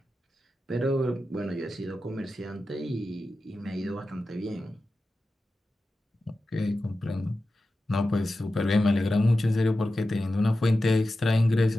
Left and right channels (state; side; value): normal; both; correlation 0.93